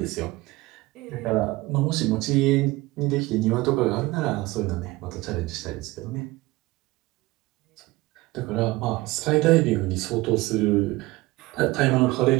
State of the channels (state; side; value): quieter; left; 20.2 dB